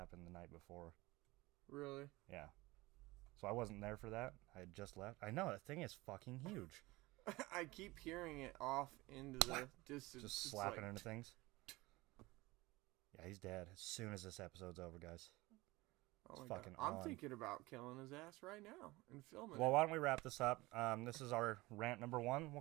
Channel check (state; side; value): quieter; left; 21.1 dB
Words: the night before. Really? Yeah. So I wasn't there for that. I had just left. I know, that thing is fucking huge. I keep hearing it off into the distance. Just It's slapping like, into things. Yeah, he's dead as soon as this episode's over, guys. Oh It's my fucking God. I'm on. thinking about killing his ass right now and filming Well, it. why don't we wrap this up? This is our rant number 1, we'll